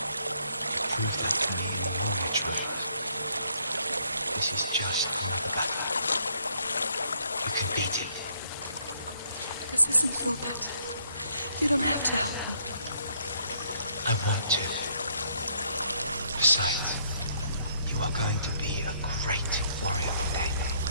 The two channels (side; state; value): both; inverted; correlation -0.68